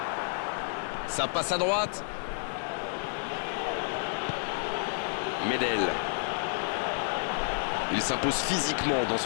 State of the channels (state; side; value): silent; right; 58 dB below the other